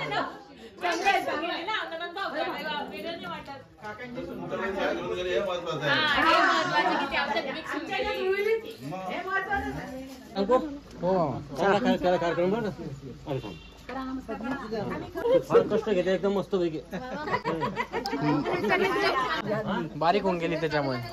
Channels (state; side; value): identical; both; correlation 1.00